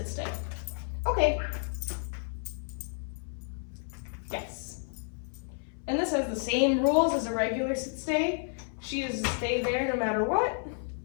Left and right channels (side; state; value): right; silent; 57 dB below the other